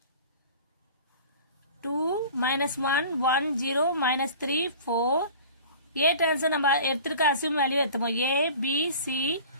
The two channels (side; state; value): both; inverted; correlation -0.42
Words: 2 minus 1 1 0 minus 3 4. ஏ டிரான்ஸ்ஃபர் நம்ம எடுத்துருக்க அசியூம் வேல்யூ எடுத்துப்போம். A B C